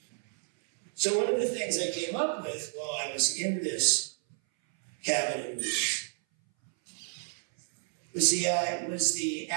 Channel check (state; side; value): silent; left; 58 dB below the other